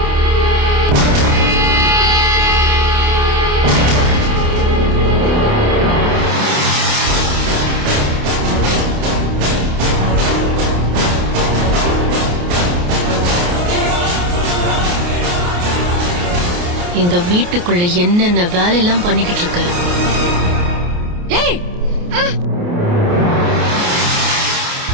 எங்க வீட்டுக்குள்ள என்னென்ன வேலையெல்லாம் பண்ணிக்கிட்டு இருக்க?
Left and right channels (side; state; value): left; late; 28 ms